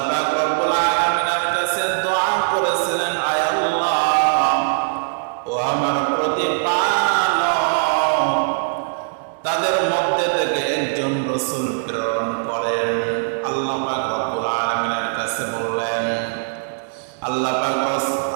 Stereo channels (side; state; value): left; silent; digital silence